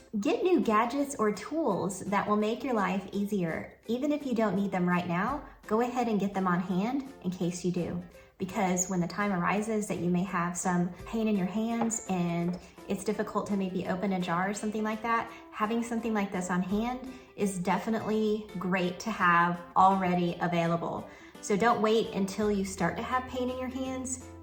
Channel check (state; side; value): identical; both; correlation 1.00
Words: get new gadgets or tools that will make your life easier. Even if you don't need them right now, go ahead and get them on hand in case you do. Because when the time arises that you may have some pain in your hands and it's difficult to maybe open a jar or something like that, having something like this on hand is definitely great to have already available. So don't wait until you start to have pain in your hands